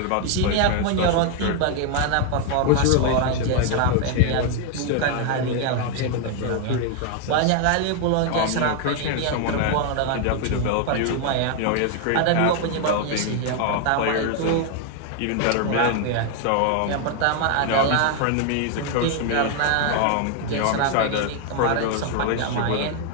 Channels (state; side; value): different; both; correlation 0.00